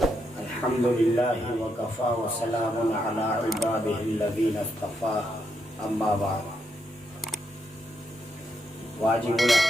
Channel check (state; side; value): normal; both; correlation 0.80